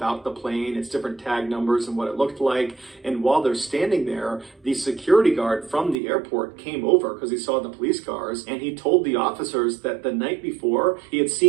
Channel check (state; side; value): drops out; left; at 6.0 s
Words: the plane, its different tag numbers and what it looked like. And while they're standing there, the security guard from the airport came over because he saw the police cars, and he told the officers that the night before he had